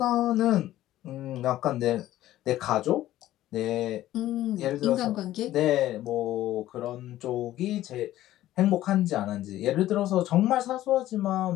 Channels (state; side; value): quieter; right; 14.2 dB